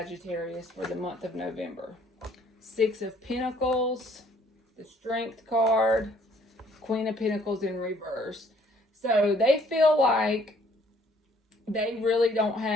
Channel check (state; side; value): normal; both; correlation 0.61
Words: for the month of November? Six of Pentacles, the Strength card, Queen of Pentacles in reverse. So they feel like they really don't